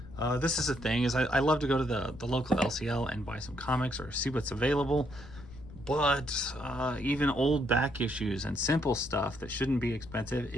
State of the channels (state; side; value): noise; left; rumble, 16 dB below the sound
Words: This is the thing, is I love to go to the local LCL and buy some comics or see what's available. But even old back issues and simple stuff that shouldn't be expensive